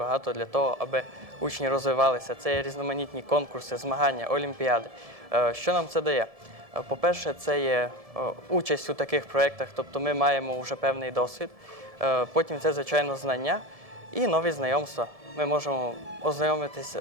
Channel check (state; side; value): late; left; 1.7 ms